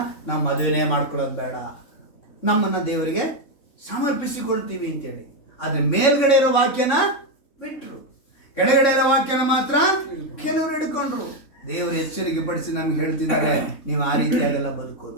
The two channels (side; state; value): right; late; 3.6 ms